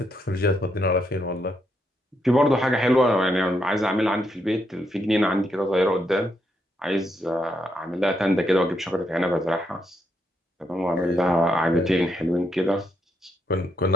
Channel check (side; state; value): both; normal; correlation 0.78